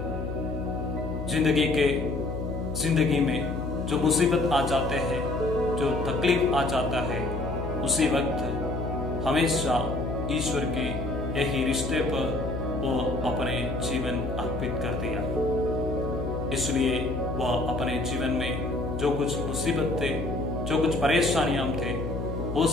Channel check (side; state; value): left; noise; hum, 5 dB below the sound